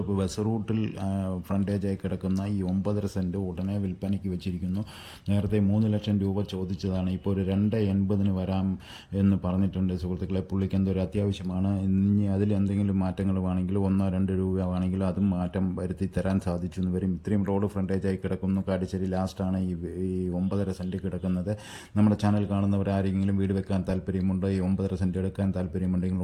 bus റൂട്ടിൽ ഫ്രണ്ടേജായി കിടക്കുന്ന ഈ 9.5 സെൻറ്റ് ഉടനെ വിൽപ്പനയ്ക്ക് വെച്ചിരിക്കുന്നു. നേരത്തെ 3 ലക്ഷം രൂപ ചോദിച്ചതാണ്. ഇപ്പോൾ ഒരു 2.80 വരാം എന്ന് പറഞ്ഞിട്ടുണ്ട്. സുഹൃത്തുക്കളെ, പുള്ളിക്ക് എന്തൊരു അത്യാവശ്യമാണ്. ഇനി അതിലെന്തെങ്കിലും മാറ്റങ്ങൾ വേണമെങ്കിൽ 1-2 രൂപ വേണമെങ്കിൽ അതും മാറ്റം വരുത്തി തരാൻ സാധിച്ചു എന്ന് വരും. ഇത്രയും റോഡ് ഫ്രണ്ടേജായി കിടക്കുന്നു. കാട്ടിശ്ശേരി ലാസ്റ്റാണ് ഈ 9.5 സെൻറ്റ് കിടക്കുന്നത്. നമ്മുടെ ചാനൽ കാണുന്നവർ ആരെങ്കിലും വീട് വെക്കാൻ താല്പര്യമുണ്ടോ, ഈ 9.5 സെൻറ്റ് എടുക്കാൻ താല്പര്യമുണ്ടെങ്കിൽ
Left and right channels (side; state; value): both; identical; correlation 1.00